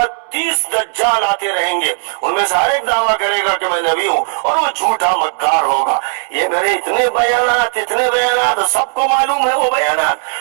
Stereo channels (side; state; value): left; silent; digital silence